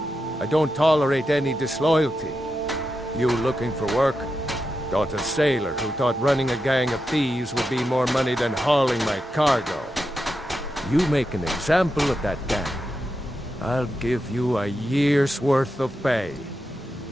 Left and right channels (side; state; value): both; normal; correlation 0.88